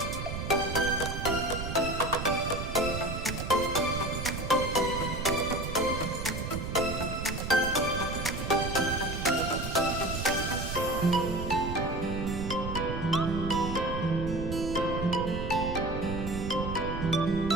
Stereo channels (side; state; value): right; noise; rumble, 5 dB below the sound